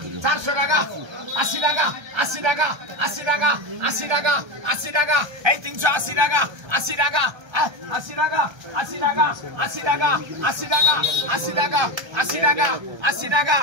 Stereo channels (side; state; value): left; late; 1.3 ms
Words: 400 টাকা, 80 টাকা, 80 টাকা, 80 টাকা, 80 টাকা, 80 টাকা, এই 380 টাকা, 80 টাকা, 80 টাকা, 80 টাকা, 80 টাকা, 80 টাকা, 80 টাকা, 80 টাকা, 80 টাকা,